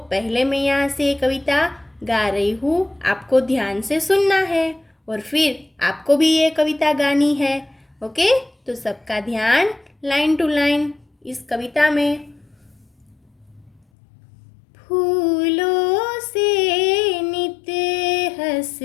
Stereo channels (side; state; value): right; drops out; at 13.8 s